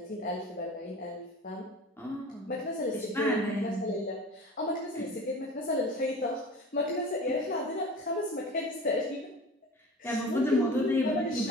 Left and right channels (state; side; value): normal; both; correlation 0.37